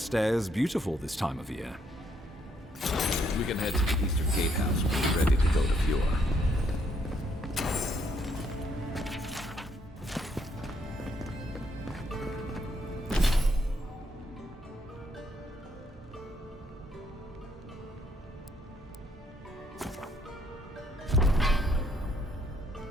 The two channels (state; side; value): normal; both; correlation 0.71